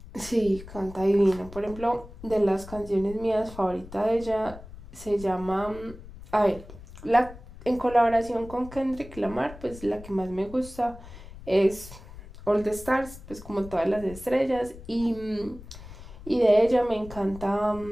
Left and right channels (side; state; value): left; noise; rumble, 16 dB below the sound